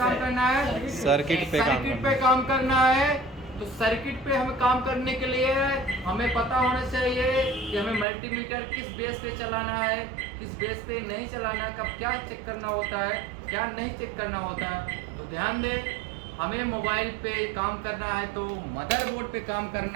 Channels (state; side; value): drops out; left; at 8.1 s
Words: करना है? सर्किट पे काम करना है। तो सर्किट पे हमें काम करने के लिए हमें पता होना चाहिए कि हमें मल्टीमीटर किस बेस पे चलाना है, किस बेस पे नहीं चलाना है, कब क्या चेक करना होता है, क्या नहीं चेक करना होता है। तो ध्यान दें, हमें मोबाइल पे काम करना है तो मदरबोर्ड पे काम